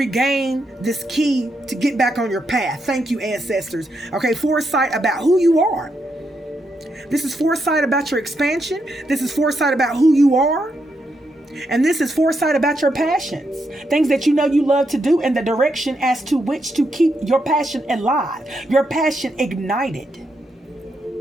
this key to get back on your path. Thank you, ancestors. Okay, foresight about who you are. This is foresight about your expansion. This is foresight about who you are. And this is foresight about your passions. Things that you know you love to do, and the direction as to which to keep your passion alive. Your passion ignited.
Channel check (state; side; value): normal; both; correlation 0.81